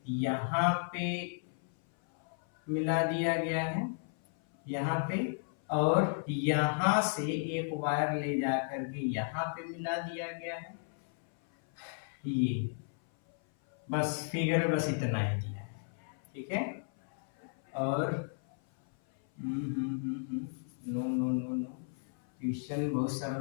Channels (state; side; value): silent; right; 55 dB below the other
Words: यहाँ पे मिला दिया गया है, यहाँ पे, और यहां से एक वायर ले जा करके यहाँ पे मिला दिया गया है। ये बस फिगर में बस इतना ही दिया है, ठीक है। और no no no no, question बहुत सरल